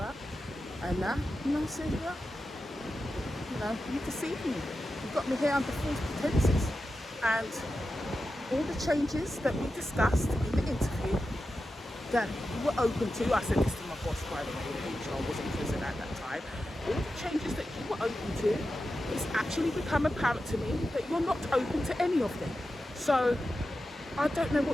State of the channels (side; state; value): both; normal; correlation 0.91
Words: and I said, yeah, you know, you deceived me. You got me here under false pretenses, and all the changes that we discussed in the interview that you were open to, I said this to my boss, by the way, the HR wasn't present at that time, all the changes that you were open to, it's actually become apparent to me that you're not open to any of them. So I don't know